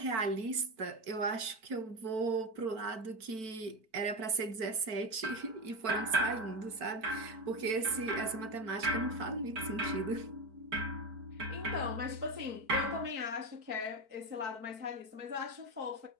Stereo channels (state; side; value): late; left; 4.5 ms